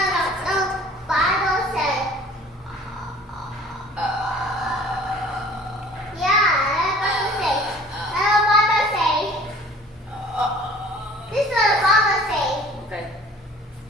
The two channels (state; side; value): normal; both; correlation 0.49